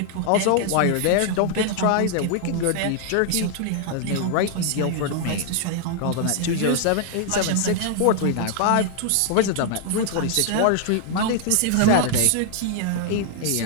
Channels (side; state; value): both; different; correlation 0.00